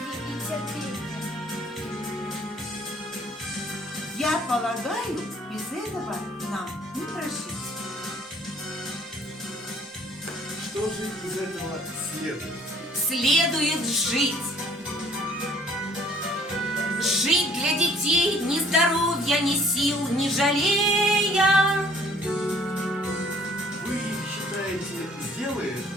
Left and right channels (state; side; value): normal; both; correlation 0.57